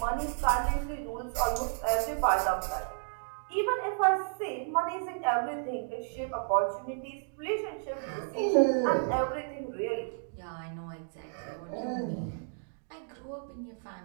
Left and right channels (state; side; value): silent; left; digital silence